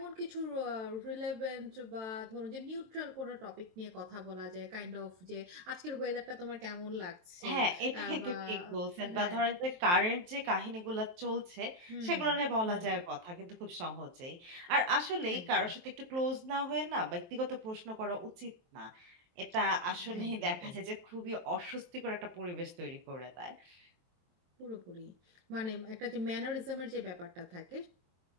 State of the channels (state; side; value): late; left; 23 ms